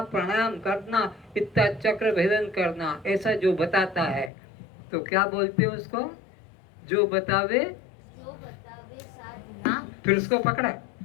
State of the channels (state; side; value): drops out; right; at 4.3 s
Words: प्राणायाम करना, इतना चक्र भेदन करना, ऐसा जो बताता है तो क्या बोलते हैं उसको? जो बतावे साधना, फिर उसको पकड़ा।